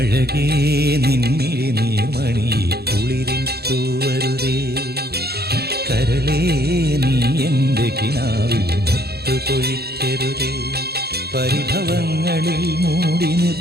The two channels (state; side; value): late; left; 0.46 ms